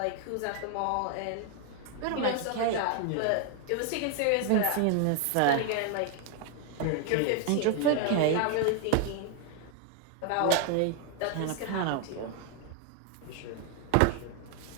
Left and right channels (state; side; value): different; both; correlation 0.00